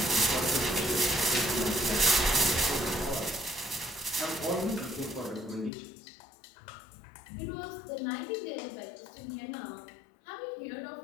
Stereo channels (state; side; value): drops out; right; at 5.7 s